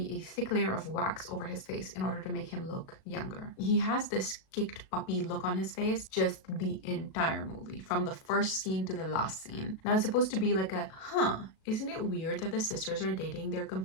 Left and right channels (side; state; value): right; late; 37 ms